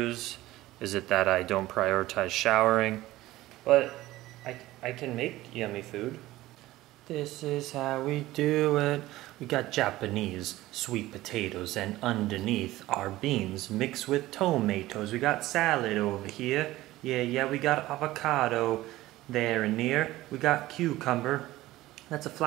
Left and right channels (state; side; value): quieter; left; 16.8 dB